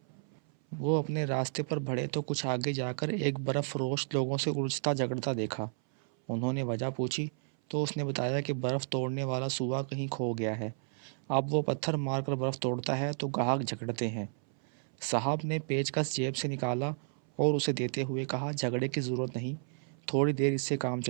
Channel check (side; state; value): left; silent; 56 dB below the other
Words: وہ اپنے راستے پر بڑھے تو کچھ آگے جا کر ایک برف فروش لوگوں سے الجھتا جھگڑتا دیکھا۔ انہوں نے وجہ پوچھی تو اس نے بتایا کہ برف توڑنے والا سوا کہیں کھو گیا ہے۔ اب وہ پتھر مار کر برف توڑتا ہے تو گاہک جھگڑتے ہیں۔ صاحب نے پیچکس جیب سے نکالا اور اسے دیتے ہوئے کہا، جھگڑے کی ضرورت نہیں، تھوڑی دیر اس سے کام